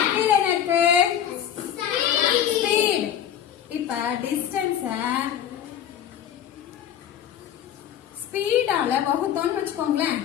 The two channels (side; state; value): right; quieter; 9.8 dB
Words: கீழே என்ன இருக்கு? ஸ்பீட். இப்ப டிஸ்டன்ஸ் ஸ்பீடால வகுத்தோம்னு வச்சுக்கோங்களேன்.